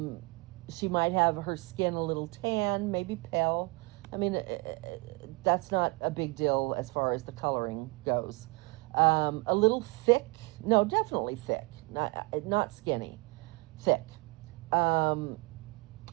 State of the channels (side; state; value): left; quieter; 26.4 dB